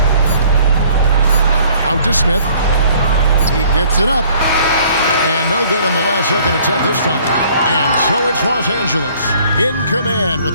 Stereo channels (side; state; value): both; inverted; correlation -0.57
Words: Out to Smith. He gets it up. And no good on the last second attempt this time. And so it's Los Angeles in command